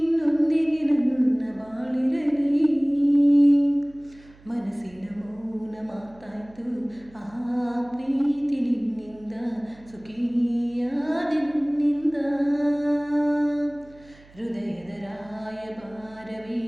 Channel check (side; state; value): right; noise; hum, 25 dB below the sound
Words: ನನ್ನ ಬಾಳಿರಲಿ. ಮನಸ್ಸಿನ ಮೌನ ಮಾತಾಯ್ತು, ಆ ಪ್ರೀತಿ ನಿನ್ನಿಂದ, ಸುಖಿಯಾದ ನಿನ್ನಿಂದ. ಹೃದಯದ ರಾಯಭಾರವೇ